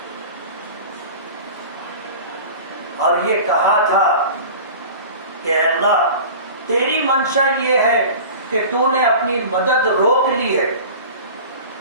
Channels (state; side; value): inverted; both; correlation -0.37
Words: اور یہ کہا تھا کہ اے اللہ، تیری منشا یہ ہے کہ تو نے اپنی مدد روک لی ہے،